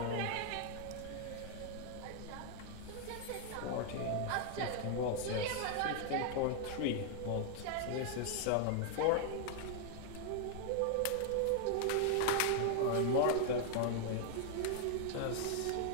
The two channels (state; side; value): different; both; correlation 0.00